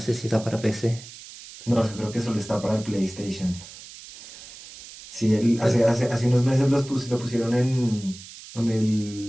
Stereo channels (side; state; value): right; noise; hiss, 16 dB below the sound